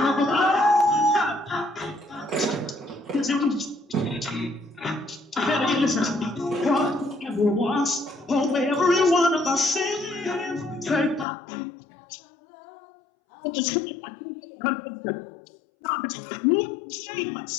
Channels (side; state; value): right; drops out; at 11.2 s